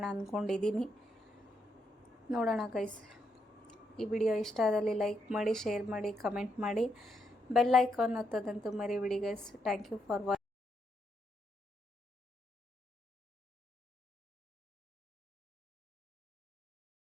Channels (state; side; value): normal; both; correlation 0.79